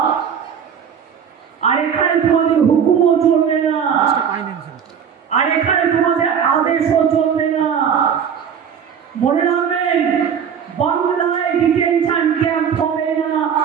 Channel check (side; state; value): left; quieter; 7.7 dB